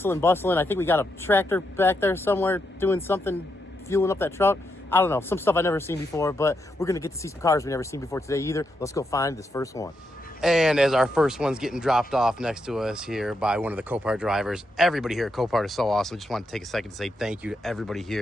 bustling. I think we got a tractor back there somewhere doing something, fueling up that truck. I don't know, some stuff I've never seen before, but we're going to get to see some cars we've never seen before today either. Let's go find this first one. And as our first one's getting dropped off next to us here by one of the Copart drivers, everybody here at Copart is so awesome. Just want to take a second to say thank you to everybody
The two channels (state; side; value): normal; both; correlation 0.82